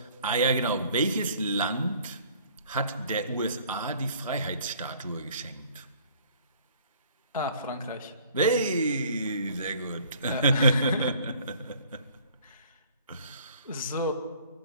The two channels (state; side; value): inverted; both; correlation -0.55